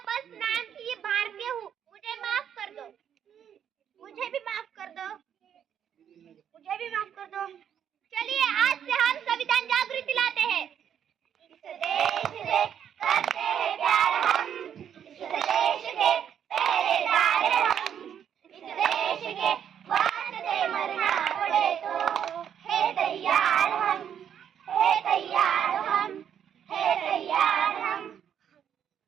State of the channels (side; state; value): left; quieter; 8.9 dB